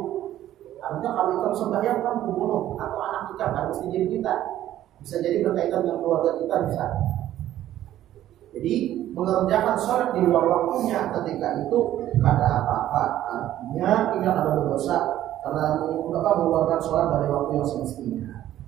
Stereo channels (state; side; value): quieter; left; 12.8 dB